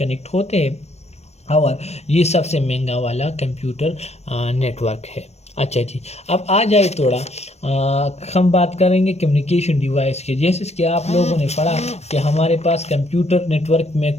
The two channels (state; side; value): late; right; 0.31 ms